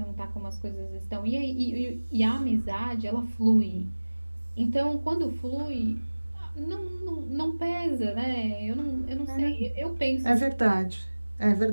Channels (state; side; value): inverted; both; correlation -1.00